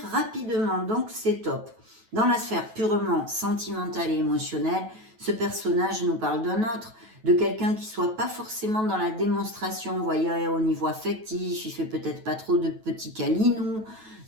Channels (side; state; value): left; late; 9.2 ms